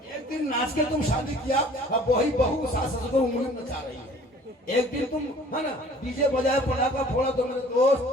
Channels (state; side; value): normal; both; correlation 0.51